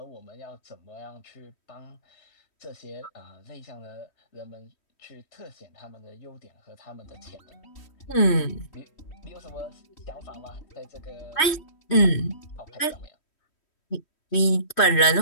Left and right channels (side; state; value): right; late; 3.1 ms